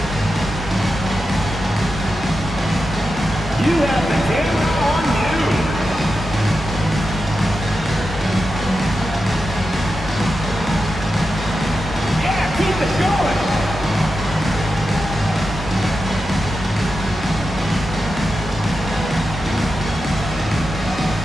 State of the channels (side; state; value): both; normal; correlation 0.90